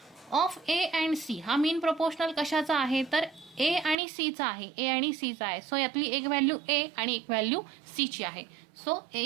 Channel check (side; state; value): left; drops out; at 4.0 s